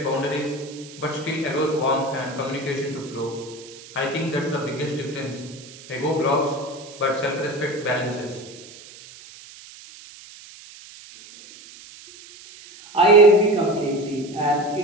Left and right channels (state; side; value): noise; right; hiss, 19 dB below the sound